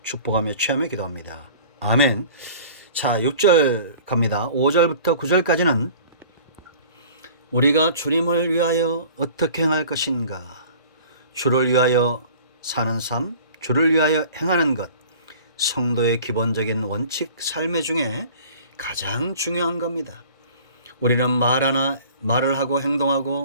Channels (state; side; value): inverted; both; correlation -0.46